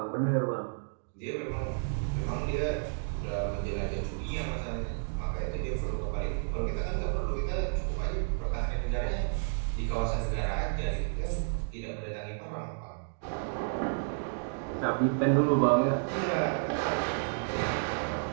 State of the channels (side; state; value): left; silent; digital silence